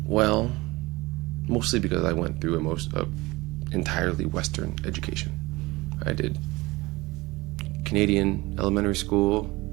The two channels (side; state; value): left; quieter; 21.7 dB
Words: Well, mostly because I went through entirely Western education. I did Canadian elementary school,